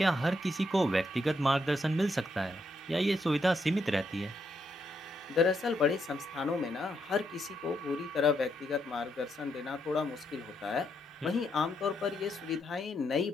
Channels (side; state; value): both; normal; correlation 0.78